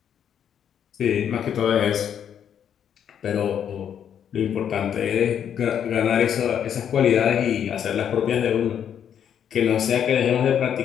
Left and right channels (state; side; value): quieter; right; 8.9 dB